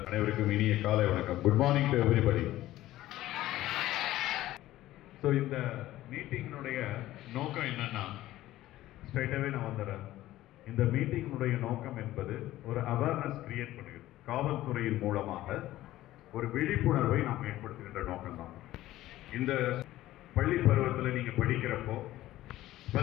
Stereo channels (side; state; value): right; quieter; 15.3 dB